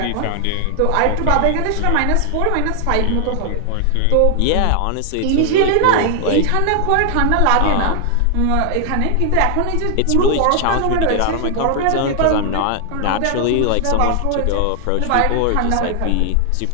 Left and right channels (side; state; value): both; different; correlation 0.00